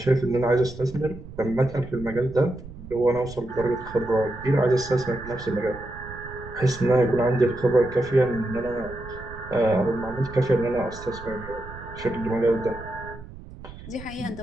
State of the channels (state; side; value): noise; right; rumble, 15 dB below the sound